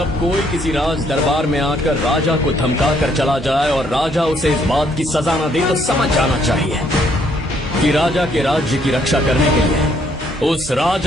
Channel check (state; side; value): normal; both; correlation 0.68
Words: कोई किसी राज दरबार में आकर राजा को धमका कर चला जाए और राजा उसे इस बात की सजा न दे तो समझ जाना चाहिए कि राजा के राज्य की रक्षा करने के लिए उस